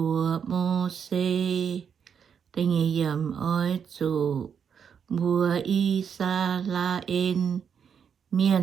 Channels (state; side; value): quieter; left; 7.4 dB